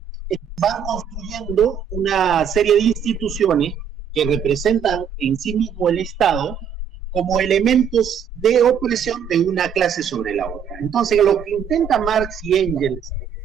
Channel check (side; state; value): left; quieter; 7.7 dB